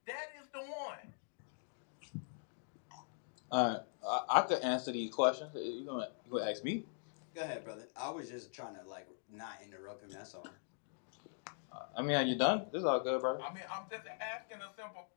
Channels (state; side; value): silent; right; digital silence